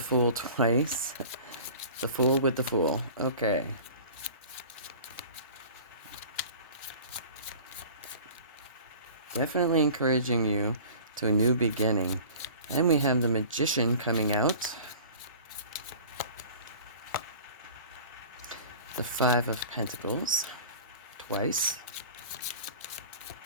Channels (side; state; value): both; inverted; correlation -0.43